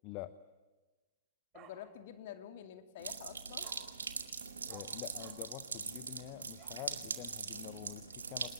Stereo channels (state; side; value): inverted; both; correlation -0.60